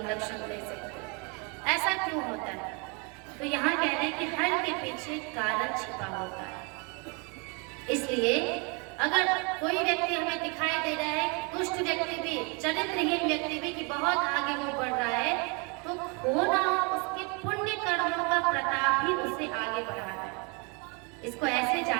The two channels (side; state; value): left; quieter; 32.0 dB